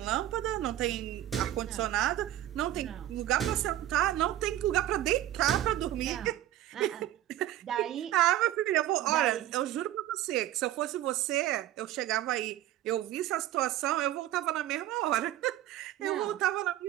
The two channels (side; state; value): left; quieter; 13.2 dB